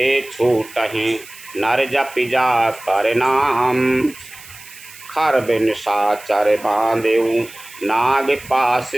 छूटहि, नर जपि जा कर नाम। खर बिन साचर बांधेऊ, नाग पास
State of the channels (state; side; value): noise; right; hiss, 19 dB below the sound